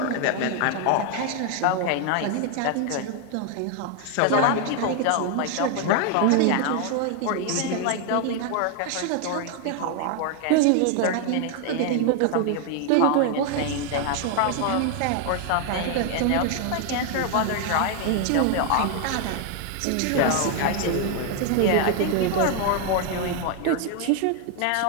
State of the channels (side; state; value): both; different; correlation 0.00